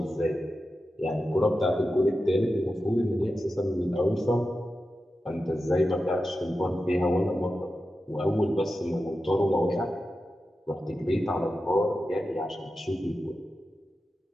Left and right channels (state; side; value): normal; both; correlation 0.91